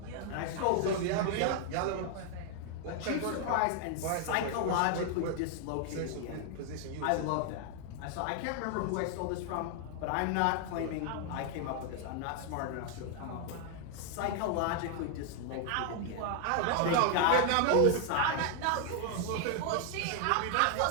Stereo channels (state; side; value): different; both; correlation 0.00